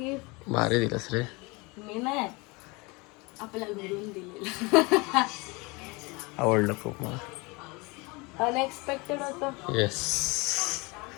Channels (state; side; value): quieter; right; 26.5 dB